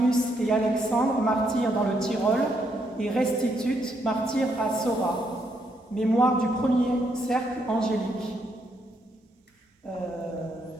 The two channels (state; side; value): normal; both; correlation 0.76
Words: et Alexandre, martyrs dans le Tyrol, et Restitut, martyr à Sora, mémoire du premier cercle angélique.